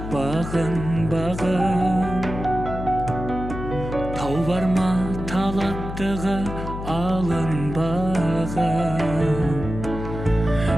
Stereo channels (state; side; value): noise; left; hum, 7 dB below the sound